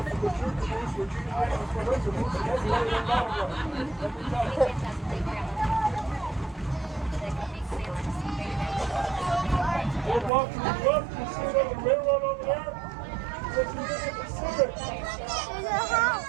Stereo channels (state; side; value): drops out; left; at 10.3 s